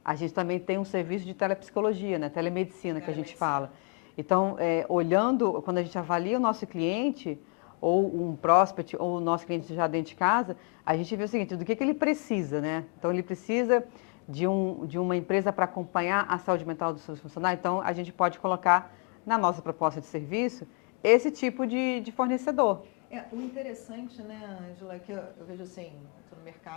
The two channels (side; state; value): right; quieter; 37.9 dB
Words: a gente também tem um serviço de telepsicologia, né? Telemedicina, que a gente fala. Então, olhando, quando a gente avalia o nosso cliente, ou um prospect, ou o nosso cliente já dentro de casa, a gente vê o seguinte, do que ele precisa, né? Então, ele precisa de uma empresa para acompanhar a saúde mental dos seus funcionários. Então, a gente pode colocar na nossa proposta de serviço esse tipo de fornecedor. O interessante, né, Ângela, é que eu vejo assim, eu estou no